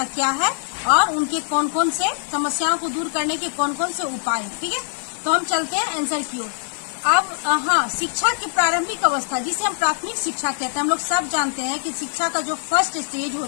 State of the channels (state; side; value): silent; right; digital silence